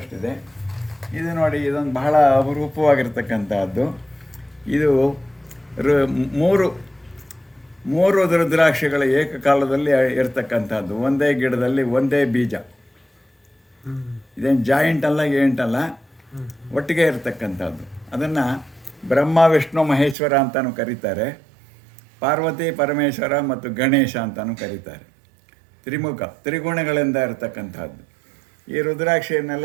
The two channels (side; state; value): left; drops out; at 20.2 s